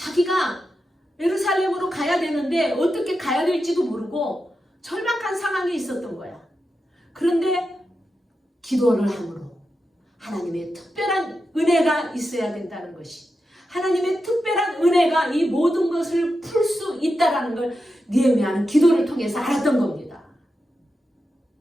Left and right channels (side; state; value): both; normal; correlation 0.89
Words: 예루살렘으로 가야 되는데 어떻게 가야 될지도 모르고 절박한 상황이 있었던 거야. 그런데 기도를 함으로 하나님의 특별한 은혜가 있어야 된다는 것이, 하나님의 특별한 은혜가 이 모든 것을 풀 수 있다는 걸 느헤미야는 기도를 통해서 알았던 겁니다.